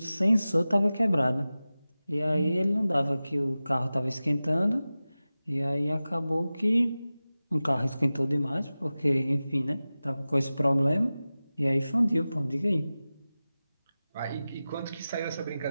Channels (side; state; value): both; inverted; correlation -0.96